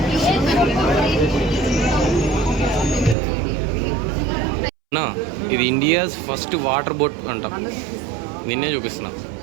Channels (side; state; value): left; drops out; at 3.2 s